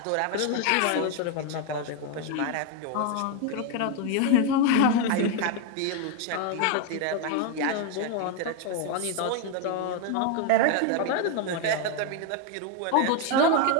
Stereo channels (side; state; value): both; different; correlation 0.01